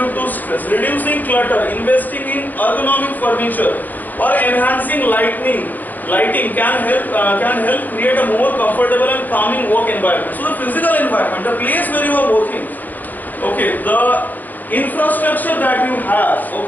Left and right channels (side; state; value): right; late; 0.084 ms